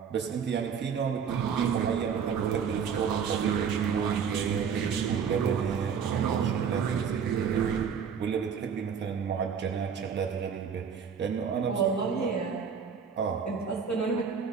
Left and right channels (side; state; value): left; quieter; 6.8 dB